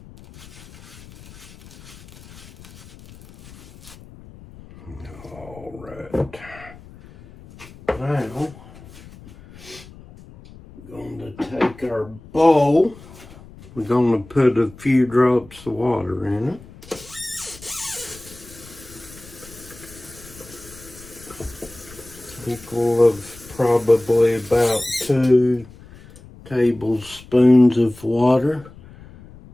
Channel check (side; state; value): left; noise; rumble, 20 dB below the sound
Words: All right. Now, take our bowl. We're going to put a few drops of water in it. Equal of probably about 2 tablespoons of water.